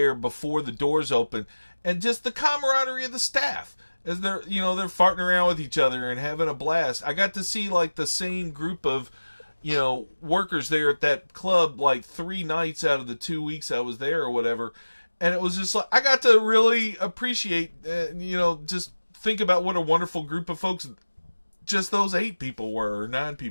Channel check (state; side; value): inverted; both; correlation -1.00